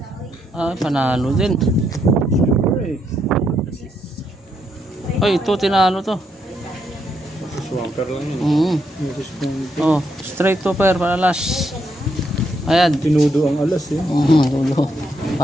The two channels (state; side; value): normal; both; correlation 0.77